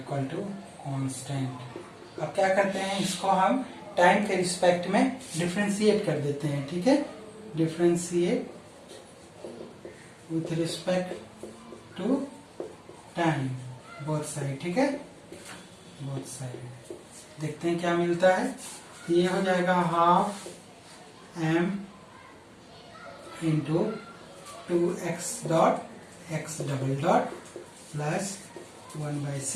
to constant. अब क्या करते हैं इसको हम टाइम के रिस्पेक्ट में डिफ्रेंशिएट कर देते हैं। ठीक है, differentiate with respect to time both side. ठीक है, बोथ साइड देखते हैं क्या मिलता है, ये हो जाएगा half m into 2x dot x double dot plus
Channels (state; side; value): identical; both; correlation 1.00